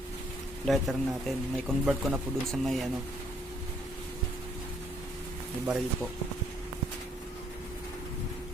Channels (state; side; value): normal; both; correlation 0.67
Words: lighter natin. May convert ko na po dun sa may may baril po.